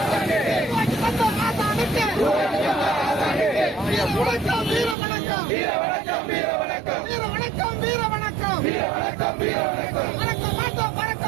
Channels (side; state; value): left; drops out; at 5.0 s